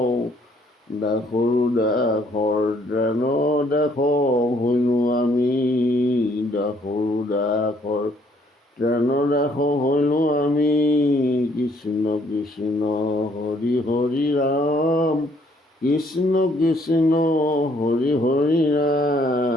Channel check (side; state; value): both; normal; correlation 0.65